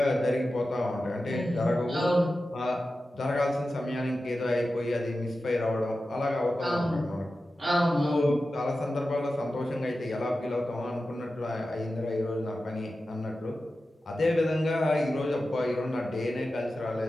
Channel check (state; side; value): normal; both; correlation 0.93